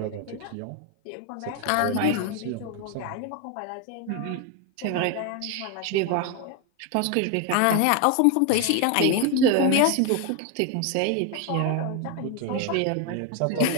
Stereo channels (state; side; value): different; both; correlation 0.01